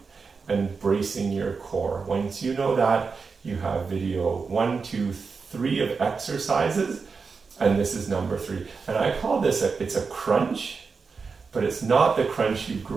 and bracing your core. Once you know that, you have video 1, 2, 3 of exercises, and this is number 3. And I call this it's a crunch, but it's not the crunch you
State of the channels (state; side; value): quieter; left; 5.0 dB